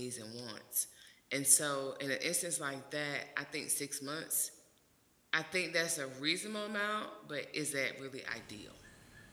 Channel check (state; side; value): identical; both; correlation 1.00